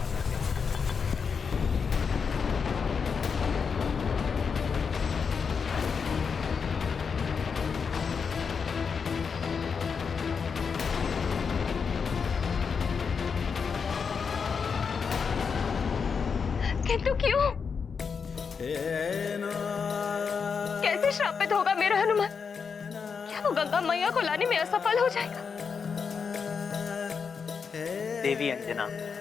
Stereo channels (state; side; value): quieter; right; 5.9 dB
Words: वाला है। किंतु क्यों? कैसे श्रापित होगा मेरा हनुमान? क्या वो गंगा मैया को लाने में असफल हो जाएगा? देवी अंजना,